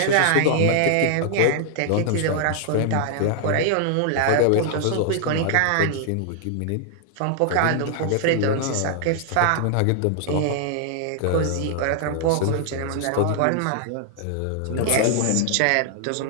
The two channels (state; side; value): different; both; correlation -0.01